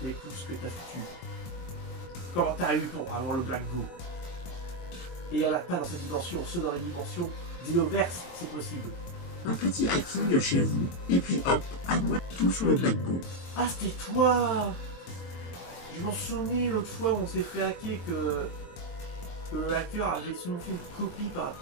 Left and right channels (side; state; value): right; late; 22 ms